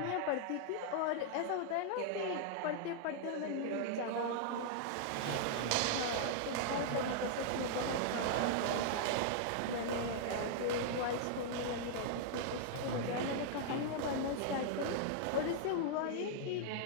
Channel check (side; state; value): both; different; correlation -0.01